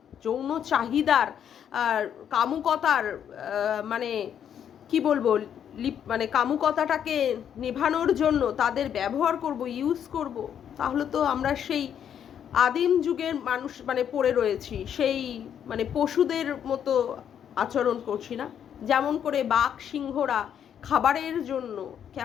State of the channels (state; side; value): quieter; right; 8.9 dB